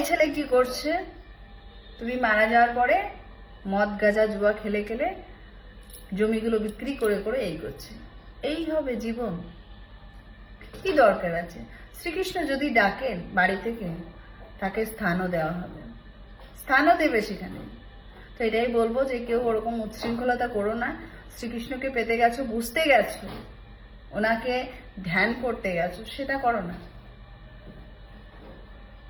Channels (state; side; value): identical; both; correlation 1.00